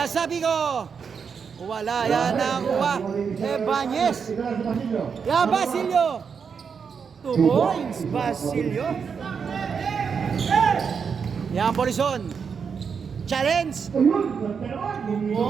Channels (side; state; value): left; quieter; 6.2 dB